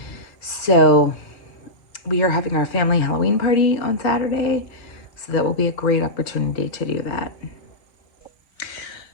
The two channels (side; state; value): right; late; 4.4 ms